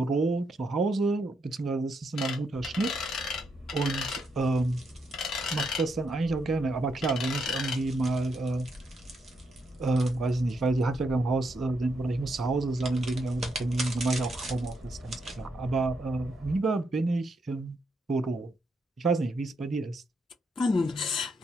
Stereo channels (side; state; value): both; normal; correlation 0.79